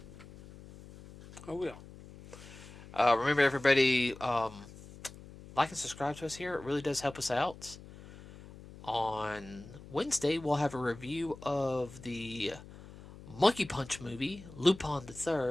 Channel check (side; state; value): left; noise; hum, 17 dB below the sound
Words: Oh, yeah. Remember, everybody, like and subscribe to us here. It really does help us out. On Wednesday, we'll have a review of the Monkey Punch movie, Lupin